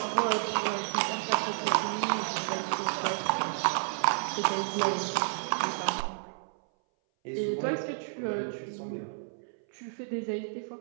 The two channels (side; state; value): left; silent; 57 dB below the other